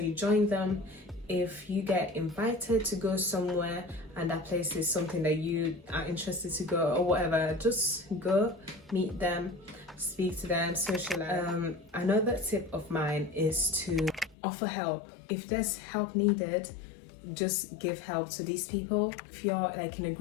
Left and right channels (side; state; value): right; drops out; at 14.4 s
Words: you join them. If you get invited to go somewhere and that place is something that you are interested to go or whatever, just go, meet them, speak to them, socialize. Another tip of mine is to offer help. If there's help needed, just give help to these people. If you're like in a